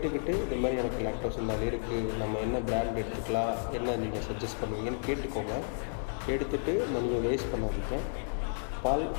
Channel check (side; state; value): right; silent; digital silence